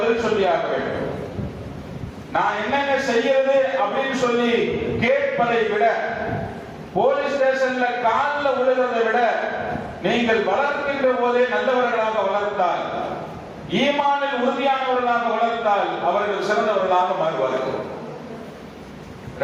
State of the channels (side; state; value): both; identical; correlation 1.00